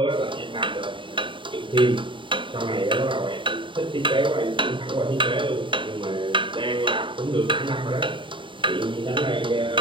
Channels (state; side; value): late; left; 0.24 ms